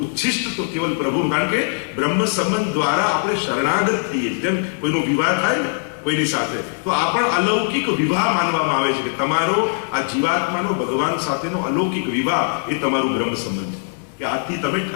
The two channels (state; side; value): silent; right; 63 dB below the other